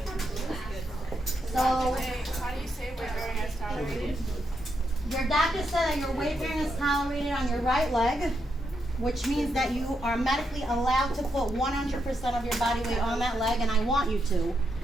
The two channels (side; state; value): both; normal; correlation 0.82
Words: So, how do you say weight bearing as tolerated? your doctor said that your weight bearing is tolerated on your right leg, which means that you are medically allowed to put 100% of your body weight on that leg, and I want you to.